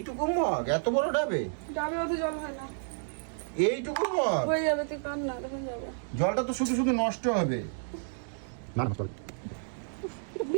মগ, এত বড় ডাবে? ডাবে অত জল হয় না। এইটুকু মগ হয়ে যাবে, তুই কান না, দেখুন যাবে। জলটা তো শুধু শুধু নষ্ট হবে। না না, চল। এটা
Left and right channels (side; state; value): left; silent; digital silence